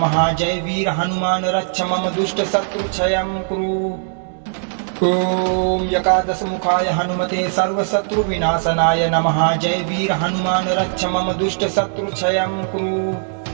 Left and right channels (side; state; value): left; silent; digital silence